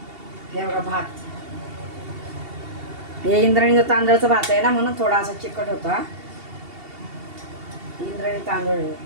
हे बघा भात, हे इंद्रायणीचा तांदळाचा भात आहे ना, म्हणून थोडा असा चिकट होता. इंद्रायणी तांदूळ आहे.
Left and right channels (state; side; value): late; left; 2.7 ms